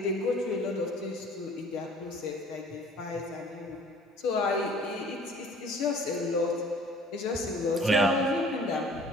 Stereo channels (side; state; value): both; normal; correlation 0.51